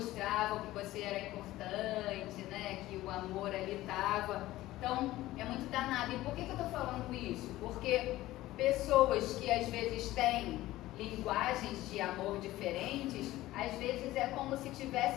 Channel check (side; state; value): right; quieter; 16.4 dB